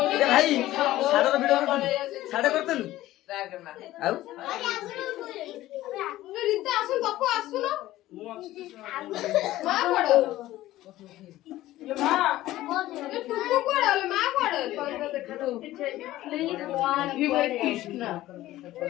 ଭାଇ ସାଡର ଭିଡ ସାଡେ କରିଦେଲୁ ଆଉ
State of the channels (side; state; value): right; quieter; 15.5 dB